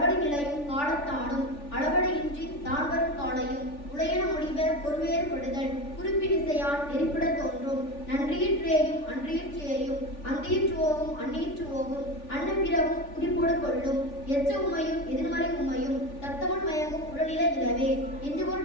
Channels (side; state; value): right; late; 3.4 ms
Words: நிலையும் காலத்தானும் அளபடியின்றி தான் வரும் காலையும் உடையன முடிவ பொறுவேறுபடுதல் குறிப்பினிசையான் நெறிப்பட தோன்றும். நன்றியிற்றேயும் அன்றியிற்றேயும் அந்தியிற்றுவோவும் அந்நியிற்றுவோவும் அன்னப்பிறவும் குறிப்போடு கொள்ளும். எச்ச உமையும் எதிர்மறை உமையும் தத்தவன் மயங்கும் உடல்நிலை இலவே.